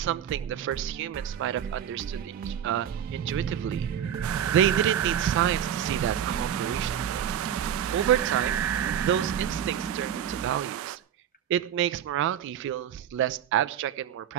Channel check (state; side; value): quieter; left; 9.5 dB